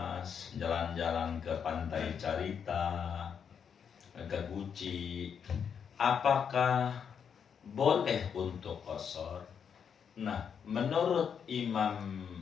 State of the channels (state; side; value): quieter; right; 7.3 dB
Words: jalan-jalan ke Pantai Carita, ke Guci, apakah boleh untuk qasar? Nah, menurut Imam